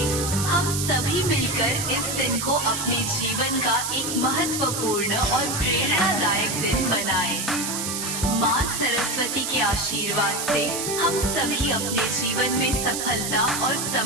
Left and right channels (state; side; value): noise; right; hiss, 3 dB below the sound